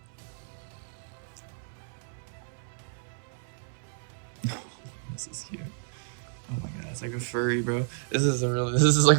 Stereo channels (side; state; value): left; silent; 56 dB below the other